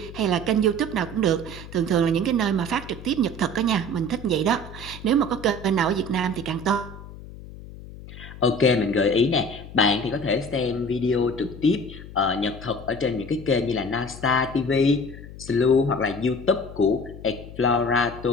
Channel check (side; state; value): left; noise; hum, 15 dB below the sound